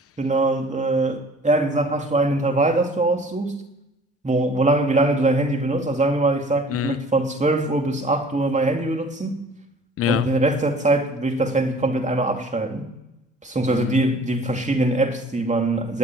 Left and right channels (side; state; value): both; normal; correlation 0.50